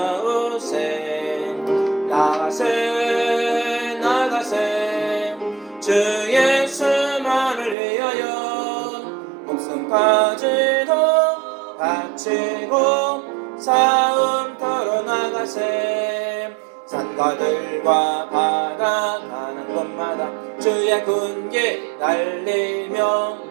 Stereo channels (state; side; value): drops out; left; at 7.8 s